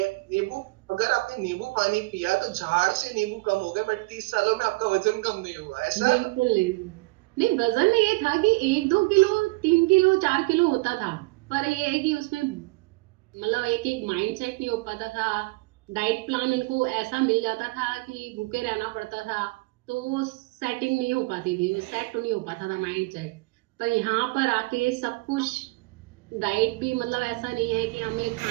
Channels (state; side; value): quieter; left; 24.5 dB